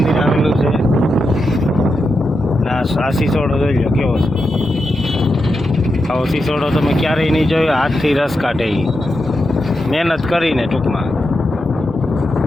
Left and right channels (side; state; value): both; normal; correlation 0.87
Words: આવેલું છે આ સિસોડો જોઈ લો કેવો છે આવો સિસોડો તમે ક્યારેય નહીં જોયો હાથથી રસ કાઢે મહેનત કરીને ટૂંકમાં